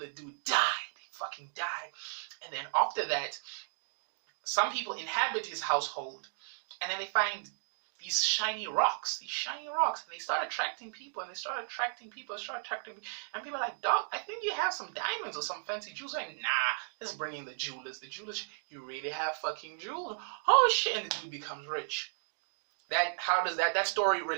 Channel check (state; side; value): silent; left; digital silence